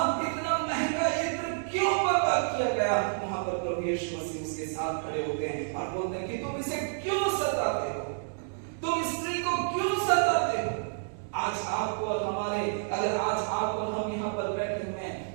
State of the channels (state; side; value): silent; left; digital silence